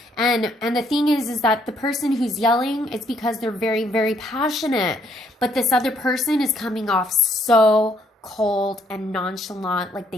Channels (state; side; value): normal; both; correlation 0.69